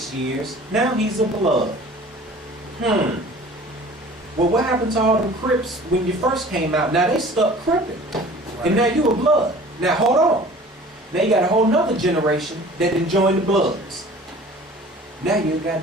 years, now he's a Blood. Well, what happened to all them Crips when you first came out? Now they stuck Cripping. And now you a Blood. Now hold on. Now you got a whole nother generation that done joined the Bloods. Now you a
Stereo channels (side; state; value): both; normal; correlation 0.46